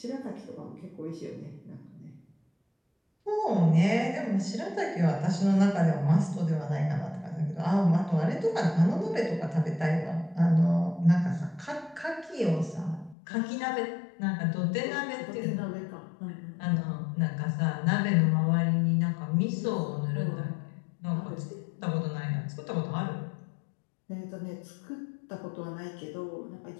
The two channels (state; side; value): drops out; right; at 13.2 s